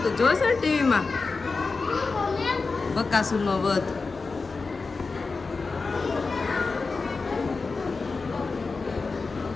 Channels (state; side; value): quieter; right; 4.2 dB